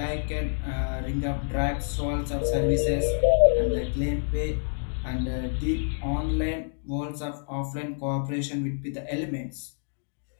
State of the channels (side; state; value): right; silent; digital silence